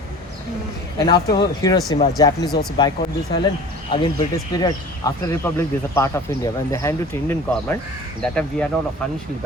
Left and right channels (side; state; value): both; normal; correlation 0.41